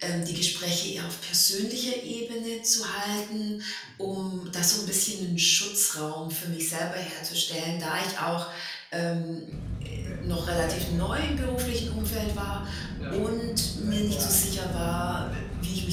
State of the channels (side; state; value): both; identical; correlation 1.00